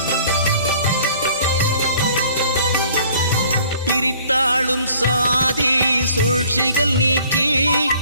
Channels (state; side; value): inverted; both; correlation -0.54